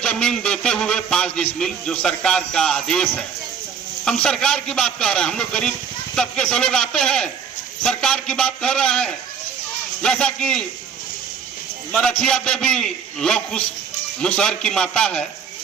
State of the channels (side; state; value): left; quieter; 6.9 dB